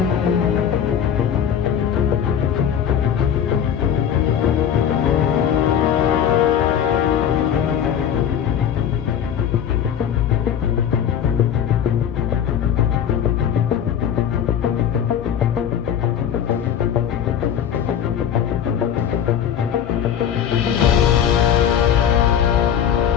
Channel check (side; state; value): right; quieter; 9.0 dB